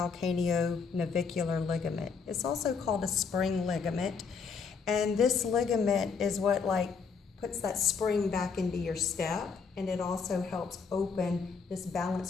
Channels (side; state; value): right; quieter; 5.4 dB